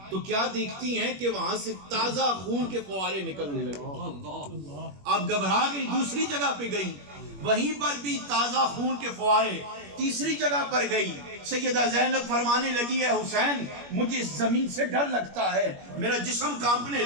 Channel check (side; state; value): left; late; 21 ms